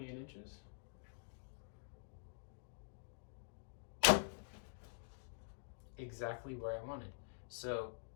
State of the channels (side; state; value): right; silent; digital silence